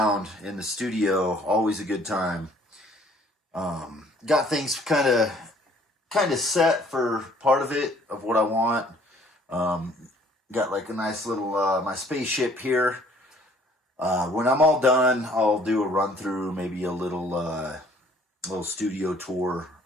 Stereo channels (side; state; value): both; normal; correlation 0.58